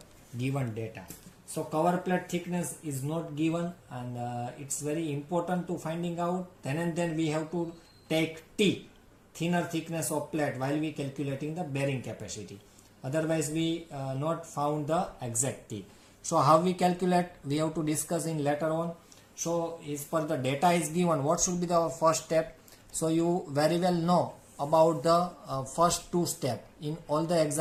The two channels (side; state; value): both; identical; correlation 1.00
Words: given data. So cover plate thickness is not given, and it's very important to finding out. Then and then we have to take T, thinner thickness of plate, while we calculating the bearing capacity. Otherwise we not found the exact T. So how we calculate, we have to discuss in later on. So as per the data is given, what should be the first step? So you very well know about the first two steps in all the